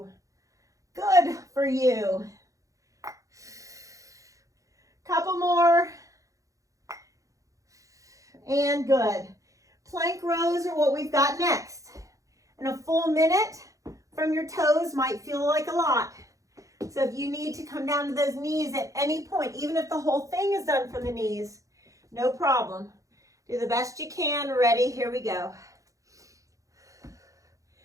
Good for you. Couple more. And good. Plank rows are what we've got next. And a full minute from your toes might feel like a lot. So if you need to come down to those knees at any point, even if the whole thing is done from the knees, no problem. Do the best you can. Ready? Here we go.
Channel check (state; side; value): late; left; 0.16 ms